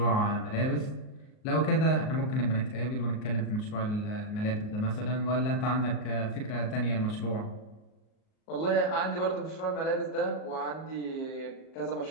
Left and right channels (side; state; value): right; late; 38 ms